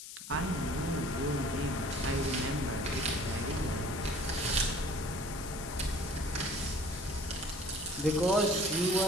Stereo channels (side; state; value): left; noise; hiss, 11 dB below the sound